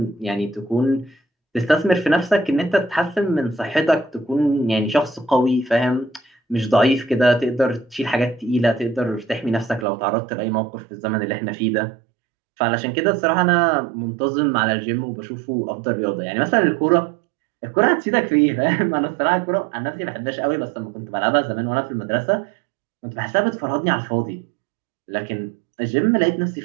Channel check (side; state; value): left; drops out; at 9.9 s